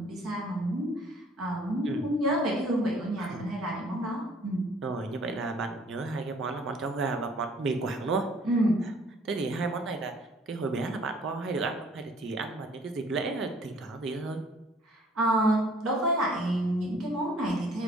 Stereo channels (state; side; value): normal; both; correlation 0.57